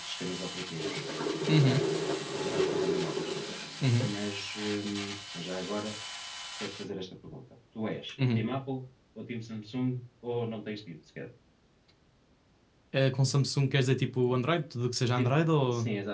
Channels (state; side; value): identical; both; correlation 1.00